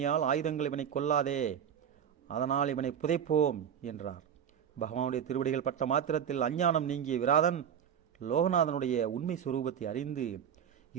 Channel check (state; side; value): quieter; left; 8.7 dB